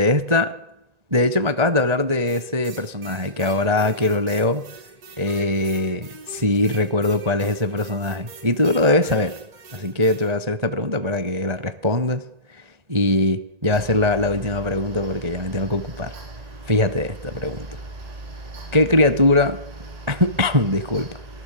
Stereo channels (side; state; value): left; late; 1.9 ms